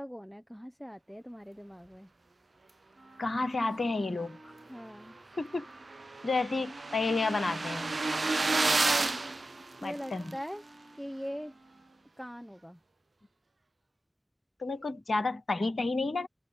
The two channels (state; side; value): normal; both; correlation 0.92